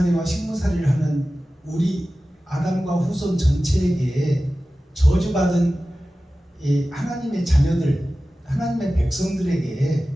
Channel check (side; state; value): both; normal; correlation 0.95